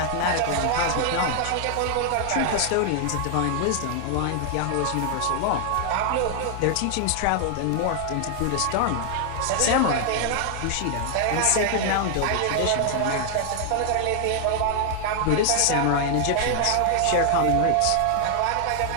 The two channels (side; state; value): both; different; correlation 0.00